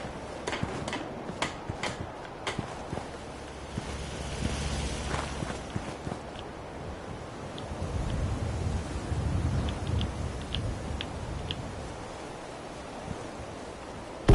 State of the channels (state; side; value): identical; both; correlation 1.00